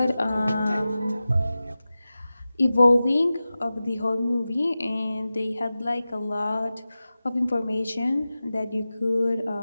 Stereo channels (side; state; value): both; inverted; correlation -0.95